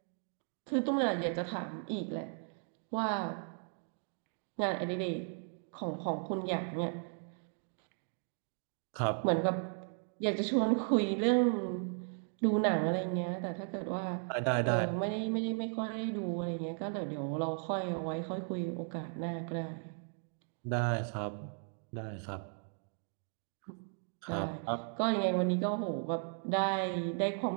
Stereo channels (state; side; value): silent; left; 54 dB below the other